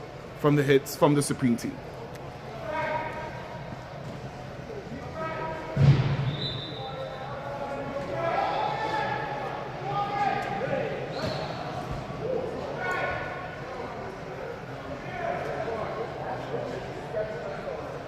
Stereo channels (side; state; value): both; identical; correlation 1.00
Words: from the Supreme Team.